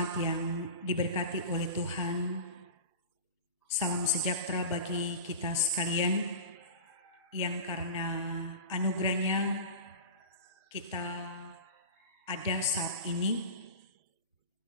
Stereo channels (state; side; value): inverted; both; correlation -0.31